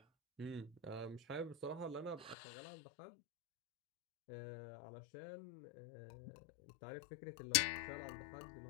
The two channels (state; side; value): drops out; right; at 2.4 s